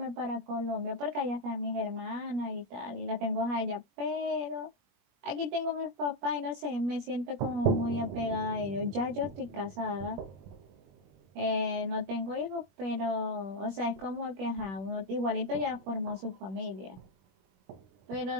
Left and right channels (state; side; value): late; left; 21 ms